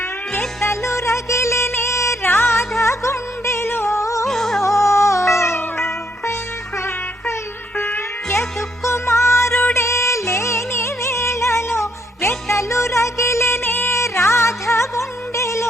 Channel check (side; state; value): both; normal; correlation 0.73